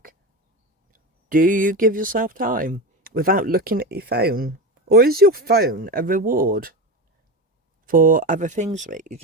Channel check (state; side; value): normal; both; correlation 0.21